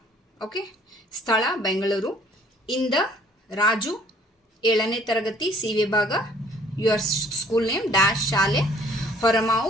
Okay. Sthala Bengaluru. In the Raju 7ನೇ ತರಗತಿ C ವಿಭಾಗ, your school name dash ಶಾಲೆ Horamavu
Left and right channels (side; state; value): both; normal; correlation 0.58